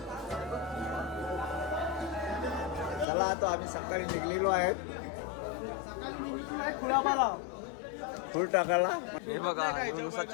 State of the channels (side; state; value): right; drops out; at 3.1 s